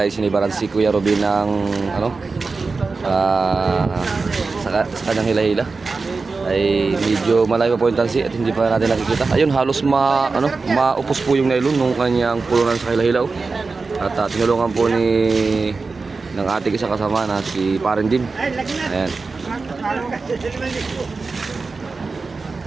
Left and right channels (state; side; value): quieter; left; 4.2 dB